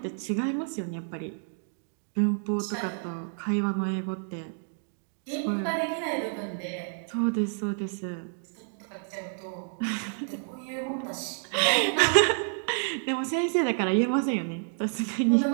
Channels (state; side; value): silent; left; 58 dB below the other